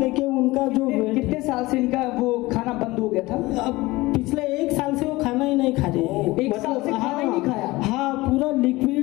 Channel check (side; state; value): right; quieter; 20.4 dB